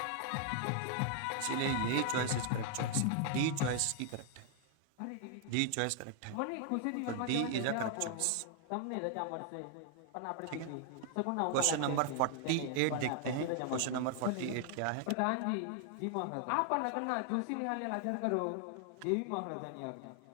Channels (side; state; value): both; different; correlation 0.00